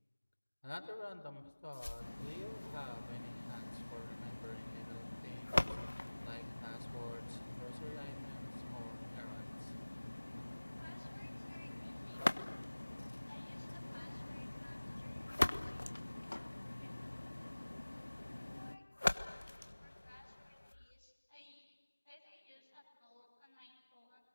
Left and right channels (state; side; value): inverted; both; correlation -1.00